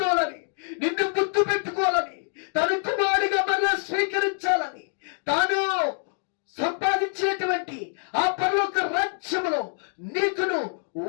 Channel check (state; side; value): silent; right; 61 dB below the other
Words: నిన్ను గుర్తు పెట్టుకోవాలని, తను కుమారుడిగా మరలా స్వీకరించాలని, తాను సంపాదించినటువంటి ఆ పరలోక రాజ్యములో నీకును